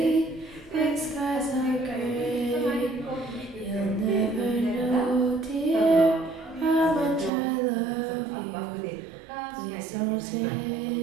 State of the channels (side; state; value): left; drops out; at 7.3 s